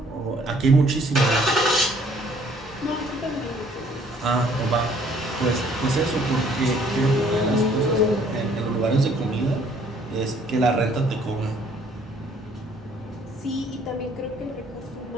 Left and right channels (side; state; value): both; normal; correlation 0.61